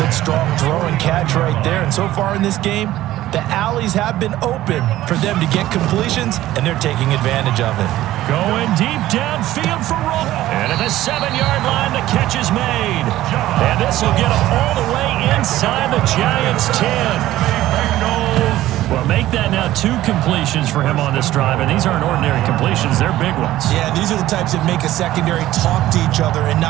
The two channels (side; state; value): left; quieter; 14.9 dB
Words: strong throw and catch right there. And so far in this game, the alleys have been open for them to get completions, and they're taking advantage of it. Going deep downfield for Roll. And at the 7-yard line, the catch is made. And this will get them all the way inside the Giants' 10. Bengals Well, make that now 2 completions for him on this drive, and these aren't ordinary completions. They're big ones. Yeah, these are the types that make a secondary talk to each other and